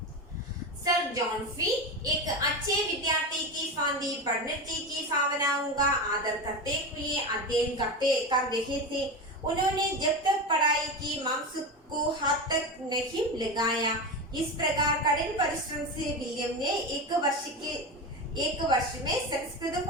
सर जॉन फी एक अच्छे विद्यार्थी की फांदी पंडित जी की भावनाओं का आदर करते हुए अध्ययन कर रहे थे. उन्होंने जब तक पढ़ाई की मांस को हाथ तक नहीं लगाया. इस प्रकार कठिन परिश्रम से विलियम ने एक वर्ष में संस्कृत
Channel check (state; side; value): normal; both; correlation 0.21